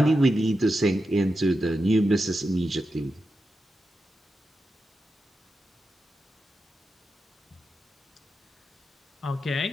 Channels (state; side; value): normal; both; correlation 0.89